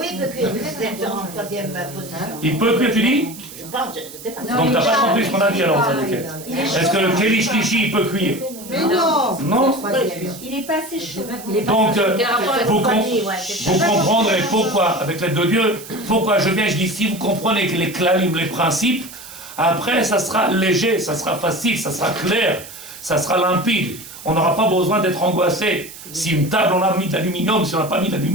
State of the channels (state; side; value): noise; right; hiss, 15 dB below the sound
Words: il peut cuire, c'est en troisième position. Il peut cuire, tu dis? Je pense, je sais pas. Donc t'as pas compris ce qu'on a dit alors, ça, est-ce que le Keli Shlishi, il peut cuire? Mais non! Non? Il n'est pas assez chaud. Donc, vous comprendrez pourquoi, avec l'aide de Dieu, pourquoi je viens, je dis, si vous comprenez que les clalim, les principes, après, ça sera léger, ça sera facile, ça sera clair, ça sera limpide. On n'aura pas besoin d'être angoissé. Si une table, on a mis d'aluminium, si on n'a pas mis